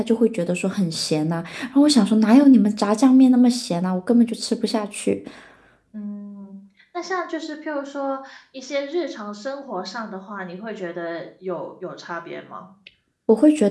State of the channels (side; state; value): both; identical; correlation 1.00